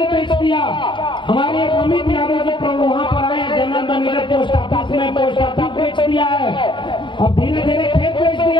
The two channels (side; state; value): right; late; 0.23 ms